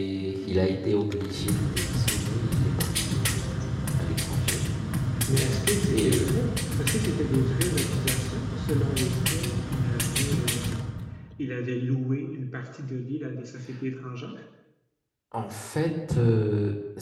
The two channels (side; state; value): both; identical; correlation 1.00